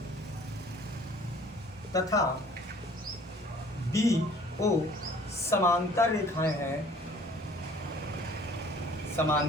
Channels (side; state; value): both; normal; correlation 0.53